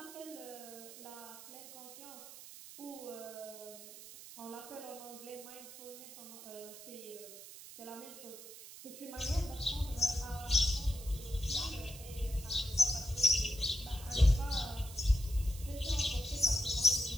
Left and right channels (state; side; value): noise; right; hiss, 14 dB below the sound